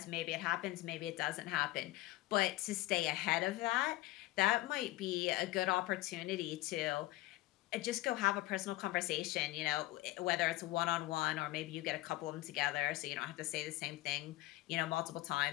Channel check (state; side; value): quieter; right; 17.8 dB